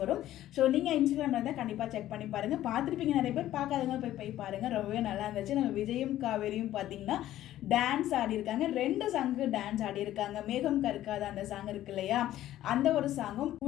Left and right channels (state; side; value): quieter; right; 13.4 dB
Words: வரும். ஸோ நீங்கள் இன்ஸ்டாகிராமில் இருந்தால் கண்டிப்பாக செக் பண்ணி பாருங்கள். பார்த்துருப்பீங்க நிறைய பேர், பார்க்காதவங்க போய் பாருங்கள். ரொம்பவே நல்லா இருந்துச்சு. நம்ம விஜயும் காவேரியும் பார்த்தீங்கன்னா டான்ஸ் ஆடி இருக்காங்க. 2 சாங்கு டான்ஸ் ஆடி இருக்காங்க. மேகம் கருக்காத அந்த சாங் இருக்கு இல்லையா, அந்த ஒரு சாங்கும்